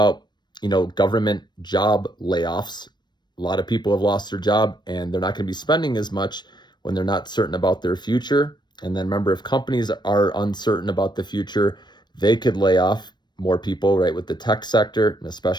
government job layoffs. A lot of people have lost their job and they're not going to be spending as much when they're not certain about their future. And then remember, if companies are uncertain about the future, they could lay off more people, right? With the tech sector, and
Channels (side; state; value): right; late; 0.21 ms